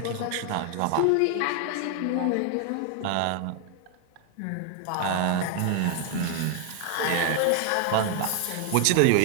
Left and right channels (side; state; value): both; different; correlation 0.00